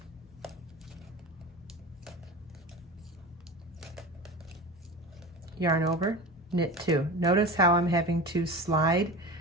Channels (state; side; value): normal; both; correlation 0.31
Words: yarn over, knit 2. Notice how I'm having to slide